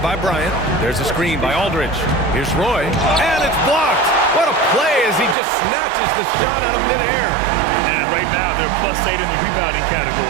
by Bryant. There's a screen by Aldridge. Here's Roy, and it's blocked. What a play as he just snatches the shot out of midair. And right now, they're +8 in the rebounding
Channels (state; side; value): drops out; left; at 5.4 s